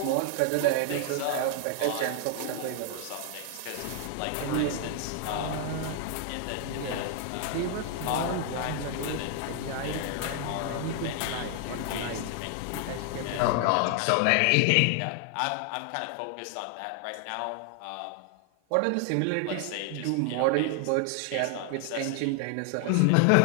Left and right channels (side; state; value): both; different; correlation 0.00